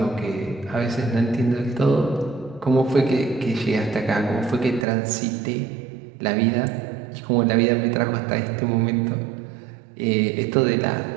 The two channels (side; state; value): left; drops out; at 4.9 s